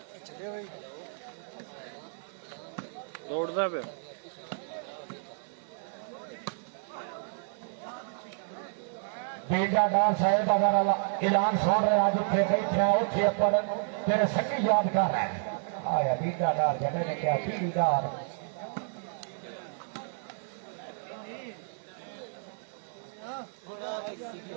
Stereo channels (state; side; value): silent; left; digital silence